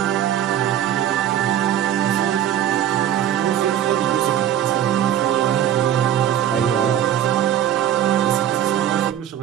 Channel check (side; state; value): left; quieter; 10.7 dB